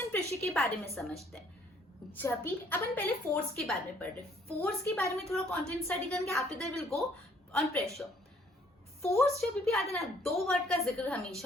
pressure के बारे में समझते हैं. जब भी अपन पहले force के बारे में पढ़ रहे, force के बारे में थोड़ा content study करेंगे. After that we'll go on pressure. Force जब भी आता है ना, दो वर्ड का जिक्र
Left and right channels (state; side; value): normal; both; correlation 0.62